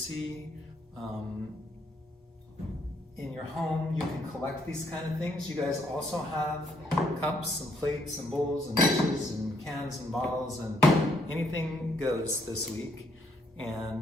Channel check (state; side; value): normal; both; correlation 0.70